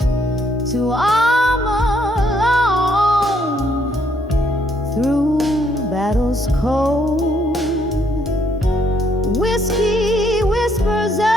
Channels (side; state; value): both; normal; correlation 0.70